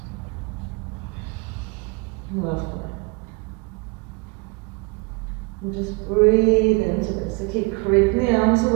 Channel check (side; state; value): left; quieter; 29.0 dB